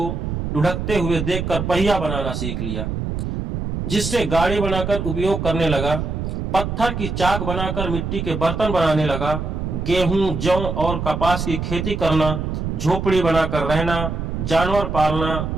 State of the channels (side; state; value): right; noise; rumble, 3 dB below the sound